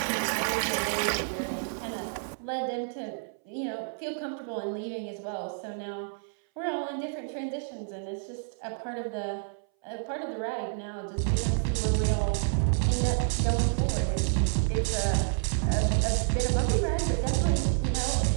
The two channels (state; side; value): silent; left; 58 dB below the other